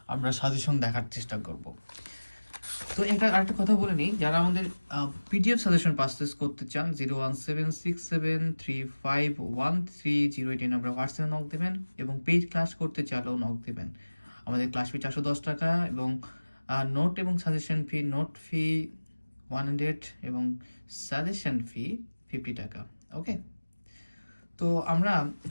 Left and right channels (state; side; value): inverted; both; correlation -1.00